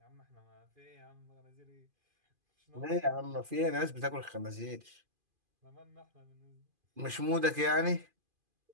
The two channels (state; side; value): late; left; 2.5 ms